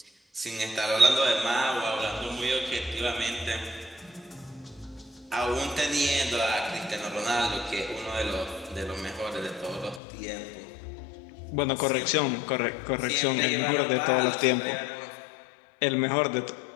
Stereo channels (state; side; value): drops out; right; at 10.0 s